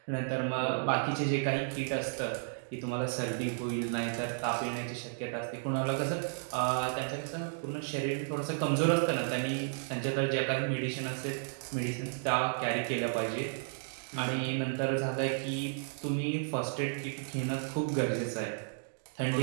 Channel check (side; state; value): left; silent; digital silence